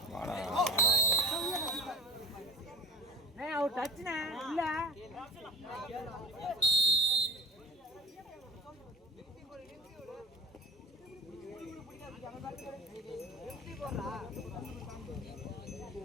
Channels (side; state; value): both; normal; correlation 0.32